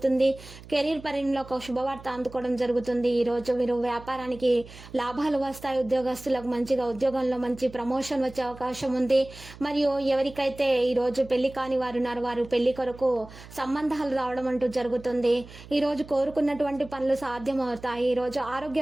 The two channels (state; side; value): noise; right; hum, 18 dB below the sound